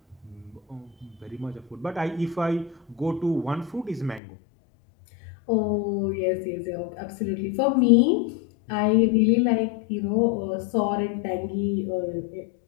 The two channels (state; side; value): drops out; right; at 4.2 s